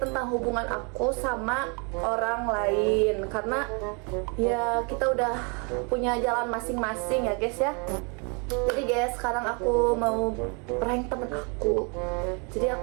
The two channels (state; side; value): quieter; left; 34.1 dB